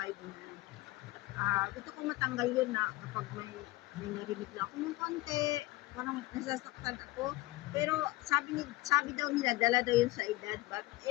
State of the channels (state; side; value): quieter; right; 19.7 dB